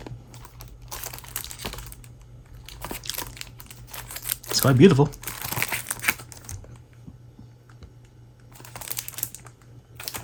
It's quite beautiful.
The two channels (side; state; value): both; identical; correlation 1.00